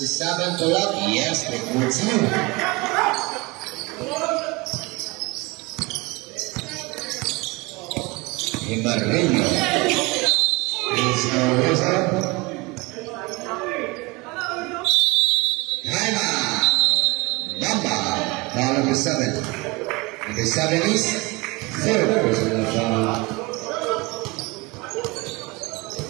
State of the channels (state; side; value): quieter; left; 24.9 dB